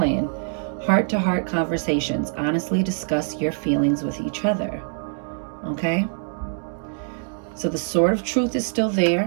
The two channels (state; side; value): silent; left; digital silence